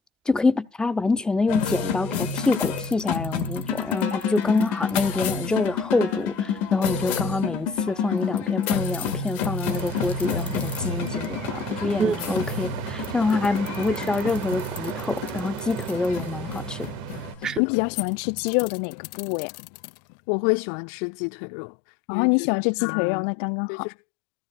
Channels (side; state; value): right; drops out; at 17.6 s